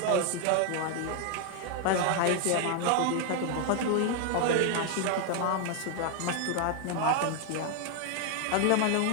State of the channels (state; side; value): different; both; correlation 0.00